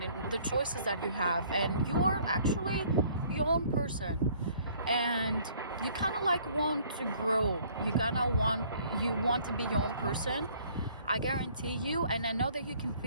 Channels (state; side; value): inverted; both; correlation -0.58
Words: in the choices that you have, and you are actually your own person, and you kind of like want to grow, you want to be your own person, I guarantee you, and I know that you can